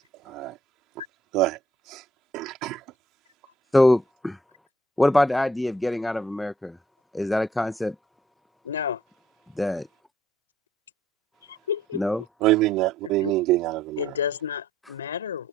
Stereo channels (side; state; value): both; normal; correlation 0.65